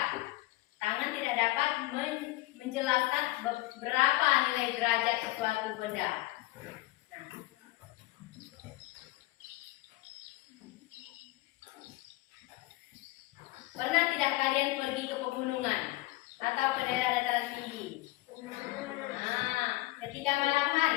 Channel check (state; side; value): quieter; right; 19.3 dB